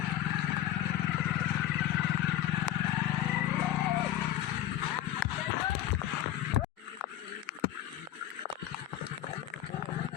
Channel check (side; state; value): right; quieter; 12.4 dB